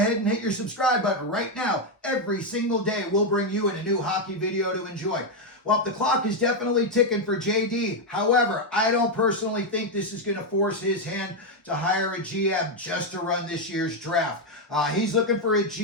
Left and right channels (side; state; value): both; normal; correlation 0.03